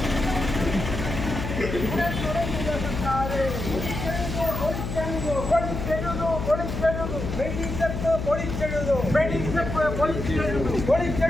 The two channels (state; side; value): noise; left; hum, 5 dB below the sound